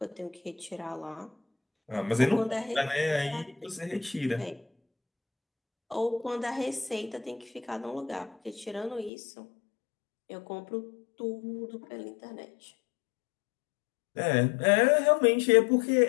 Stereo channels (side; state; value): right; drops out; at 9.1 s